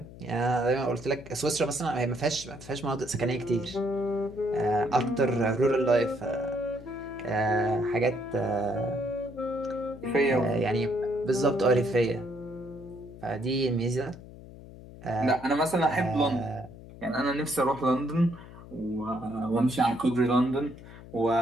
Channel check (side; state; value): left; noise; hum, 17 dB below the sound